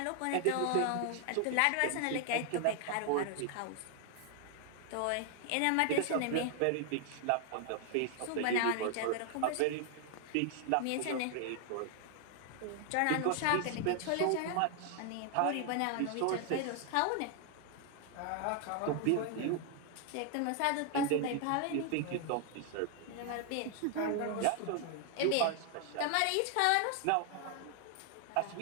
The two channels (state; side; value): different; both; correlation 0.00